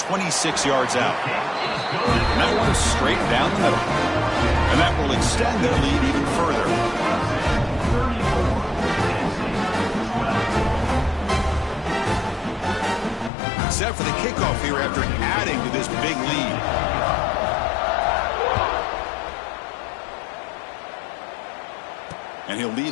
yards out. And that one is straight down the middle. And that will extend their lead even further. Set for the kickoff here after adding to this big lead. And he'll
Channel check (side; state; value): right; drops out; at 13.3 s